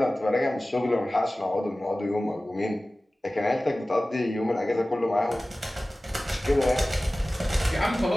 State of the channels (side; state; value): both; normal; correlation 0.97